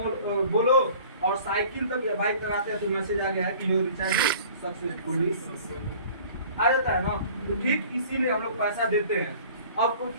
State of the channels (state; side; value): inverted; both; correlation -0.48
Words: बोलो और साइकिल तक या बाइक तक आते हैं तो मैसेज आ गया है कि योर रिचार्ज सक्सेसफुली आ जाता है ना। तो ठीक इसीलिए हम लोग पैसा देते हैं। आपको